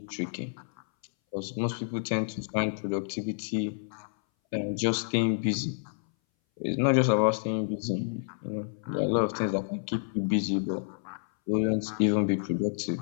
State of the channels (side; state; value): right; silent; 58 dB below the other